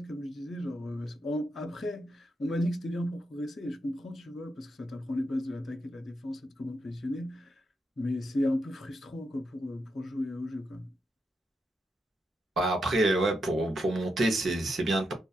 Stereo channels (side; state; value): both; normal; correlation 0.83